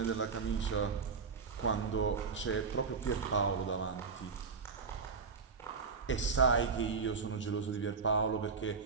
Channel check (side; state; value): left; quieter; 5.2 dB